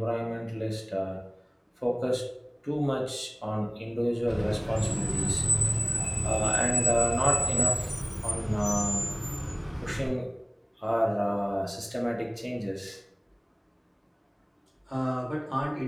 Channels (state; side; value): identical; both; correlation 1.00